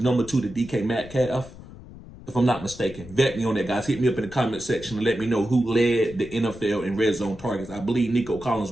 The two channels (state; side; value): noise; left; rumble, 17 dB below the sound